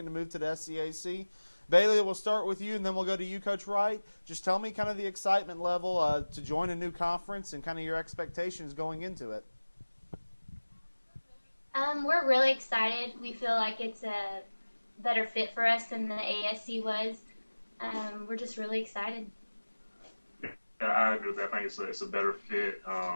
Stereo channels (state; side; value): inverted; both; correlation -1.00